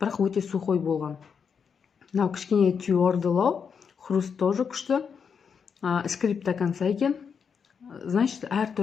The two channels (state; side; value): quieter; right; 6.5 dB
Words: бірақ өте сухой болған. Мынау кішкене твердылау, хруст тоже күшті, скрип до конца екен. Значит,